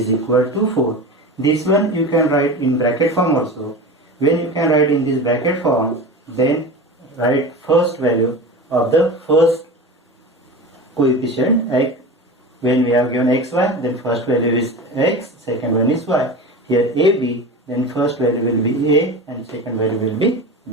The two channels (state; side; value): normal; both; correlation 0.30